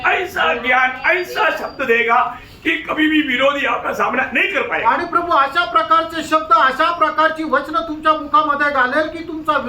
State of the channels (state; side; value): identical; both; correlation 1.00